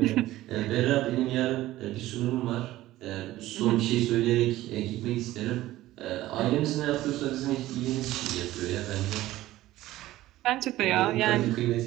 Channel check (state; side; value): quieter; left; 15.8 dB